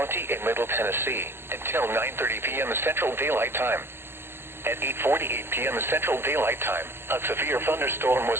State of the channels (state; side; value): late; left; 0.11 ms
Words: in Middle Tennessee until 9:30 p.m. Central Daylight Time. At 8:48 p.m. Central Daylight Time, a severe thunderstorm